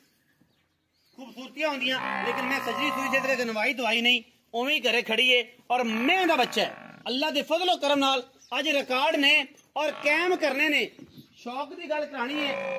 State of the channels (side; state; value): both; identical; correlation 1.00